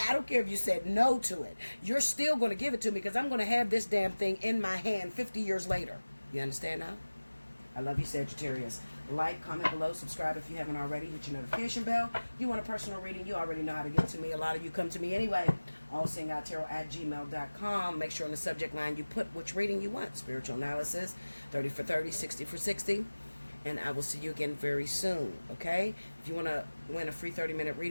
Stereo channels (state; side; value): inverted; both; correlation -1.00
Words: I don't care if you said no to it. You're still going to give it to me because I'm going to have this damn thing in my hand 50 years later. You understand now? I love you, Sagittarius. Like, comment below, subscribe if you haven't already. Hit your notification bell. You want a personal reading, you already know how to get to me. A lot of you come to me anyway. Allseeingeyetarot@gmail.com. Make sure on the subject line you put which reading you want. Spiritual analysis, 30 for 30, 60 for 60. And I will see you again very soon, okay? If you want to win a free 30-minute